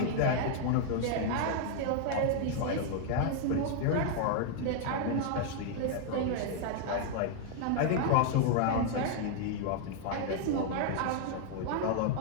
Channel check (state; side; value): different; both; correlation 0.00